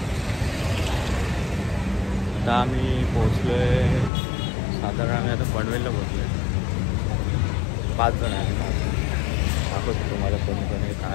आता आम्ही पोहोचलो आहे, साधारण आम्ही आता पनवेलला पोहोचलो आहे. 5 जण आहे. दाखवतो तुम्हाला कोणी कोणी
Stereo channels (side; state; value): right; drops out; at 4.1 s